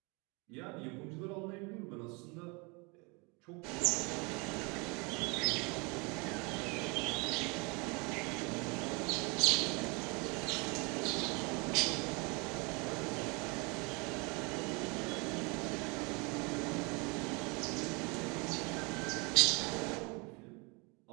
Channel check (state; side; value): quieter; left; 29.6 dB